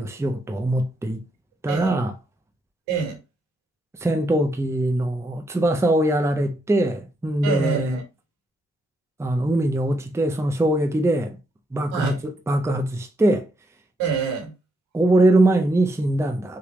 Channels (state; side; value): normal; both; correlation 0.79